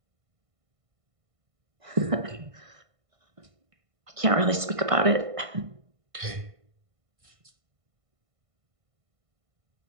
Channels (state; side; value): late; left; 1.5 ms